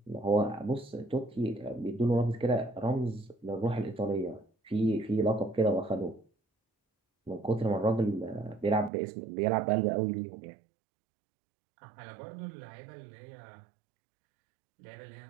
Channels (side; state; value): left; drops out; at 8.9 s